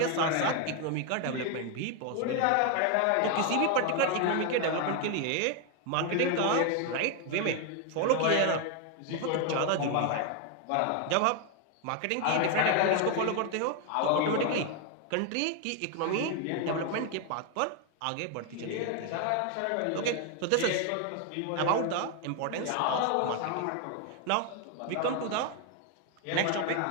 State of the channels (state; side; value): different; both; correlation 0.01